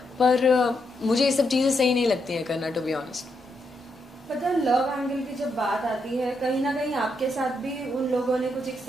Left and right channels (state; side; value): normal; both; correlation 0.80